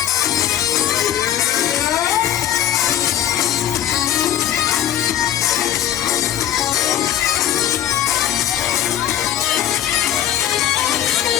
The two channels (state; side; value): quieter; right; 11.5 dB